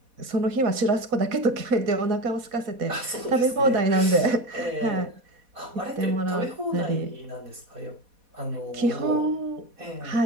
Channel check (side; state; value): left; late; 4.1 ms